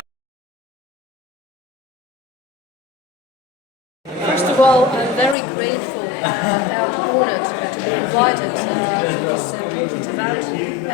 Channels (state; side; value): drops out; right; at 5.4 s